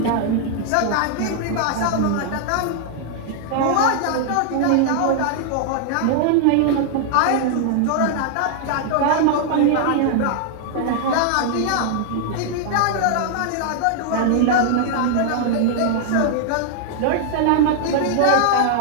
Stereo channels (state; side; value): different; both; correlation -0.01